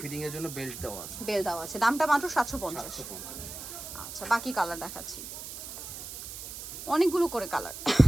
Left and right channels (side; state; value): right; noise; hiss, 9 dB below the sound